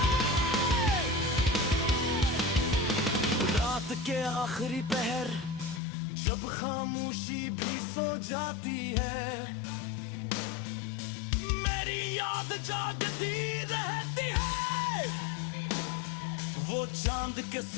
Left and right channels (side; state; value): right; drops out; at 5.8 s